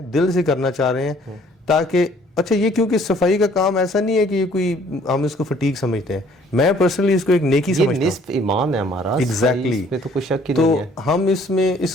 دل سے کرنا چاہ رہے ہیں تاکہ اچھا یہ کیونکہ صفائی کا کام ایسا نہیں ہے کہ یہ کوئی ہم اس کو فٹیگ سمجھتے ہیں, میں پرسنلی اس کو ایک نیکی سمجھتا ہوں, نصف ایمان ہے ہمارا. ایگزیکٹلی, تو کوئی شک ہی تو نہیں ہے. ہم اس میں اس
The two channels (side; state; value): both; normal; correlation 0.59